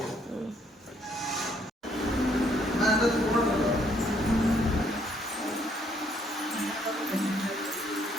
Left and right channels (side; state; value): both; normal; correlation 0.68